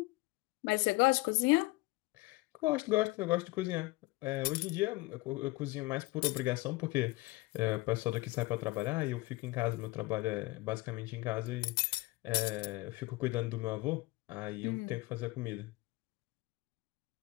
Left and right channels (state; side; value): quieter; right; 21.7 dB